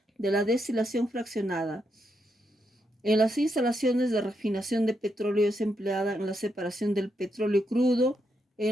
de la destilación fraccionada. En las instalaciones de refinación de petróleo es empleada en la separación del petróleo crudo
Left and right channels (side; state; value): both; normal; correlation 0.81